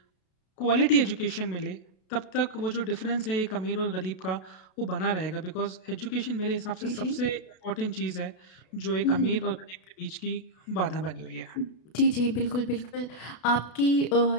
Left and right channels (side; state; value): right; late; 32 ms